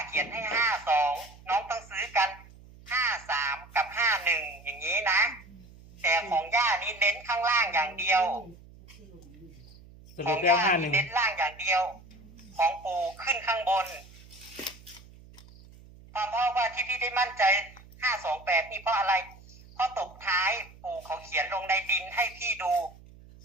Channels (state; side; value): noise; right; hum, 22 dB below the sound